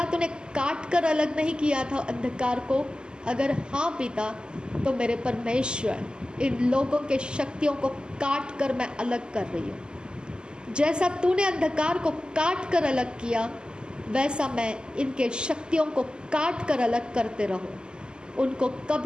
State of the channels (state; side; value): late; left; 0.047 ms